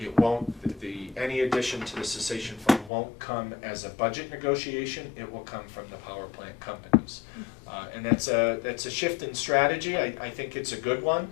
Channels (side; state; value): right; drops out; at 2.9 s